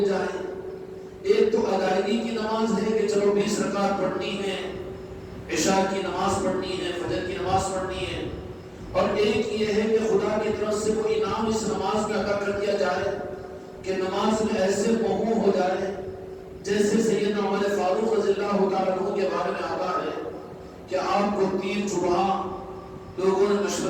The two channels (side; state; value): both; identical; correlation 1.00